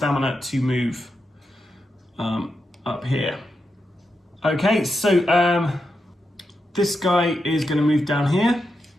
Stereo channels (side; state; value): both; normal; correlation 0.86